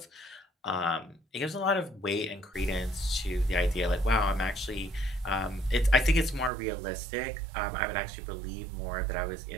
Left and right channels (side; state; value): left; drops out; at 6.5 s